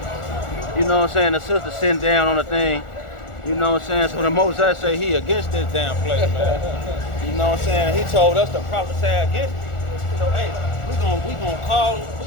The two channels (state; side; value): late; right; 1.4 ms